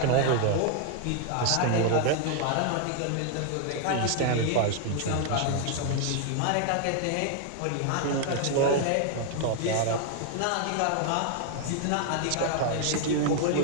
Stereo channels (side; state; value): both; different; correlation 0.00